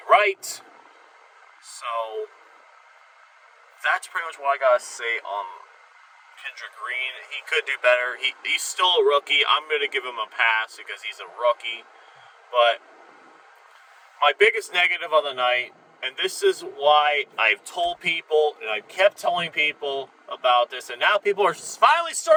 right. So that's pretty much what I gotta say on Kendrick Green. He could do better. He's still a rookie. I'm gonna give him a pass because he's a rookie. But my biggest negative of the night, and this is why I've told people, and I've kept telling people about this, and now people are finally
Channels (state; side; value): identical; both; correlation 1.00